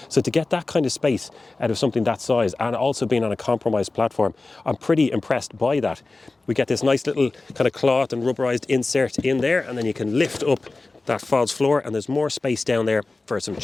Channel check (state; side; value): quieter; right; 3.4 dB